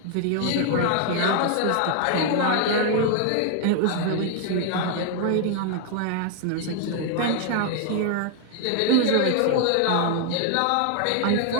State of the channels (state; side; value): different; both; correlation 0.00